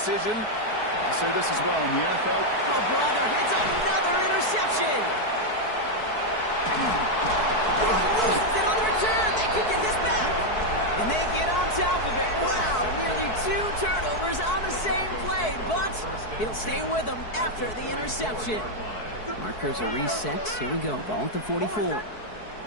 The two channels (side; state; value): right; late; 4.6 ms